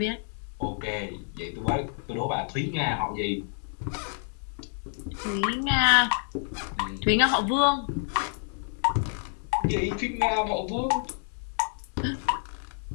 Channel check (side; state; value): right; silent; digital silence